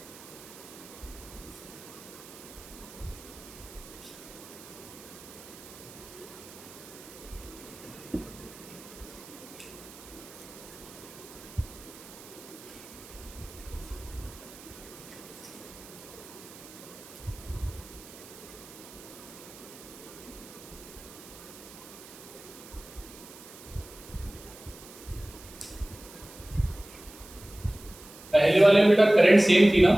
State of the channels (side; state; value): right; noise; hiss, 17 dB below the sound